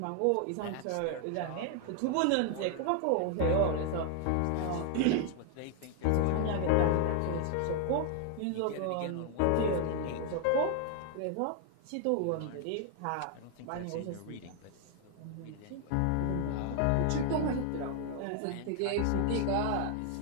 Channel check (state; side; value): different; both; correlation 0.00